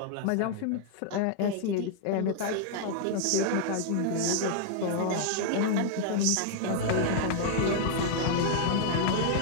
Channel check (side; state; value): both; different; correlation -0.01